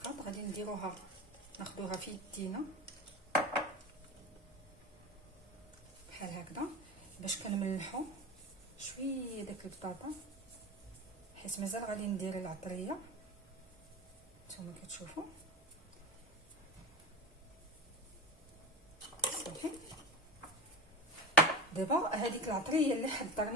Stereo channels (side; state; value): both; normal; correlation 0.28